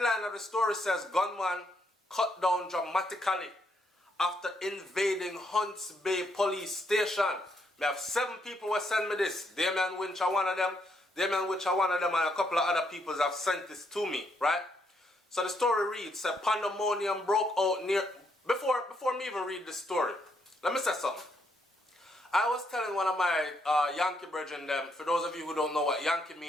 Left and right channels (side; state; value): both; normal; correlation 0.75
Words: of the story says, gunman cut down dramatically after invading Hunts Bay police station. We have 7 people who sent me this. Damien Winch are one of them. And a couple of other people have sent this to me, right? So the story reads, pandemonium broke out near... Before me even read the story, let me say something. I was telling one of my Yankee brethren them, for those of you who don't know what Yankee